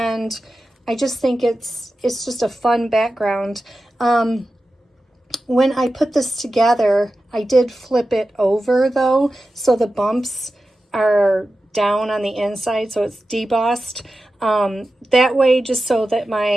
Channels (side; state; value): both; normal; correlation 0.93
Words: I just think it's just a fun background. When I put this together, I did flip it over though, so the bumps are down on the inside, so it's debossed. That way, just so that